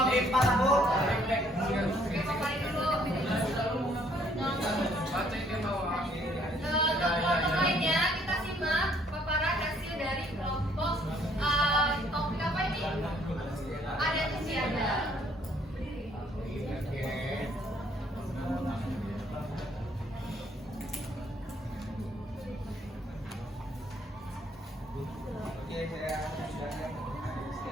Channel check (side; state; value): both; normal; correlation 0.64